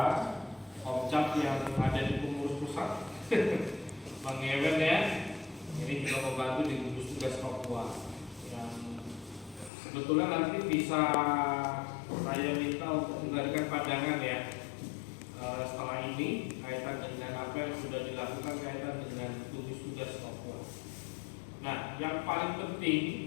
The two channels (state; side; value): drops out; right; at 9.7 s